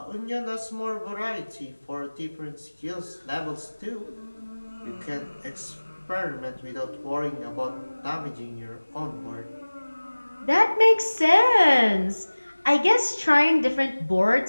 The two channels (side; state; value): both; inverted; correlation -1.00